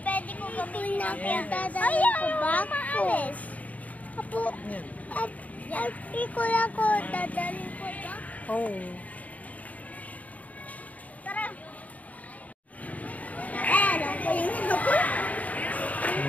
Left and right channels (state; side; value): late; right; 0.072 ms